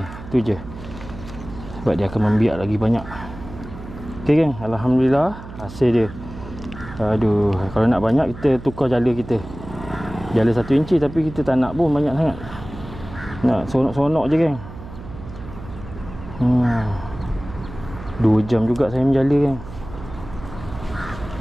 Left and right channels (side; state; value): right; noise; hum, 14 dB below the sound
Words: Tu je. Sebab dia akan membiak lagi banyak. Okay geng, alhamdulillah hasil dia. Aduh, kalau nak banyak kita tukar jala kita. Jala 1 inci tapi kita tak nak pun banyak sangat. Nak sonok-sonok je geng. 2 jam juga saya menjala geng.